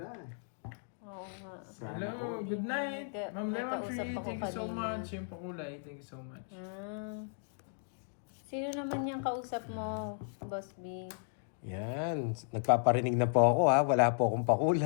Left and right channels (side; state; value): right; silent; digital silence